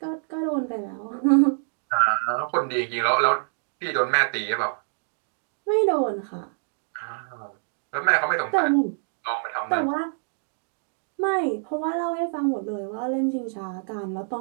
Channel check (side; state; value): left; silent; digital silence